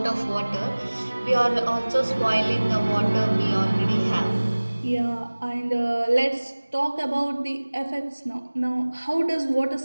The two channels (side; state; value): both; inverted; correlation -1.00